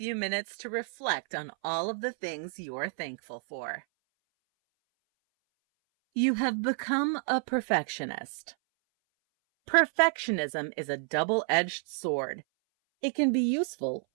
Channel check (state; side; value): silent; left; 58 dB below the other